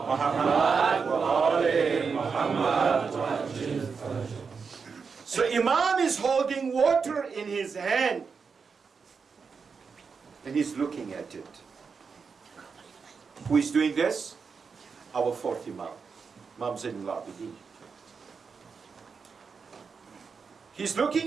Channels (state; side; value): quieter; left; 5.5 dB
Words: Muhammad wa ali Muhammad. So Imam is holding water in his hand and he's looking at it. Who is doing this? Our fourth Imam, Imam Zainul Abidin. He's